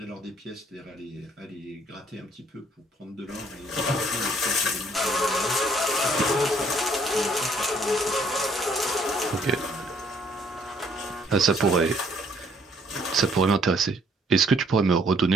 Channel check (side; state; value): both; normal; correlation 0.64